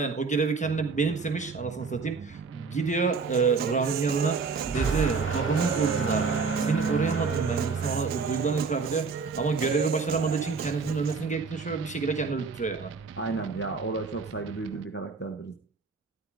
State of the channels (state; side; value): quieter; left; 4.8 dB